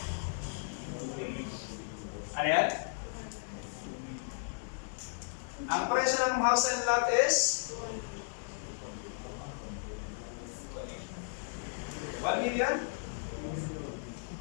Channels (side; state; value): right; silent; digital silence